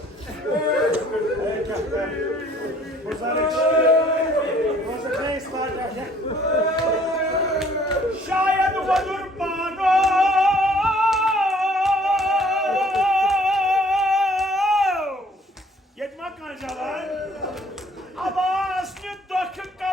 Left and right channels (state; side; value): normal; both; correlation 0.58